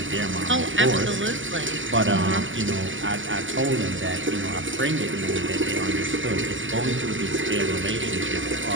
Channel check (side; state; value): left; late; 0.56 ms